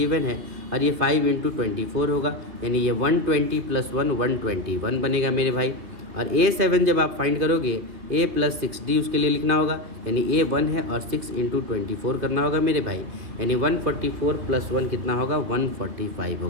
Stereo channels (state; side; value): late; left; 3.1 ms